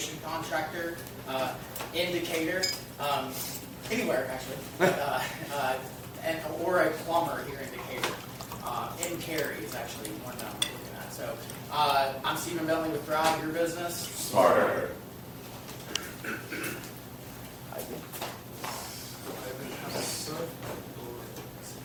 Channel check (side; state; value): both; identical; correlation 1.00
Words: contractor, indicator, anywhere actually, or a plumber here in Decatur. In Cary is actually one that I'm looking at. So I'm Stephen Bentley with Thrive, your business. Smarter.